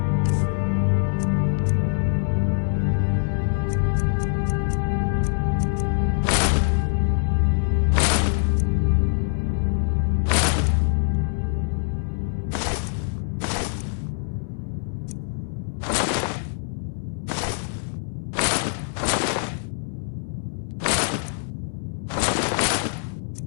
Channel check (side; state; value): right; silent; 63 dB below the other